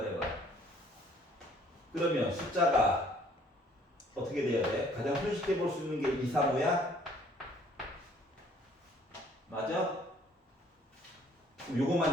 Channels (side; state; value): both; normal; correlation 0.59